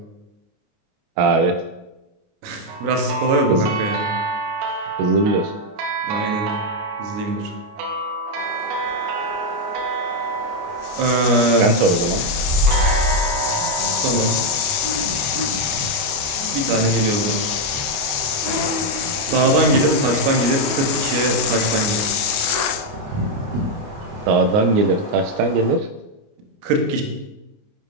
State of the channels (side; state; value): left; late; 29 ms